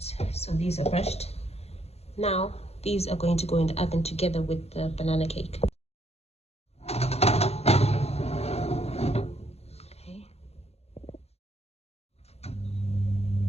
So these are brushed. Now these are going to go in the oven together with the banana cake. Okay.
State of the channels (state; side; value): late; right; 0.30 ms